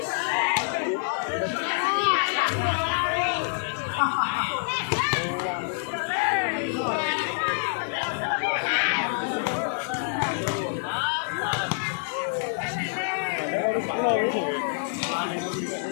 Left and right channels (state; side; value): silent; right; digital silence